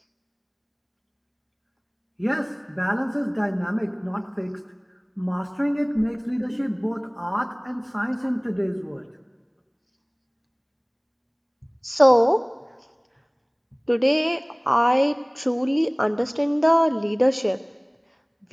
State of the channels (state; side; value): identical; both; correlation 1.00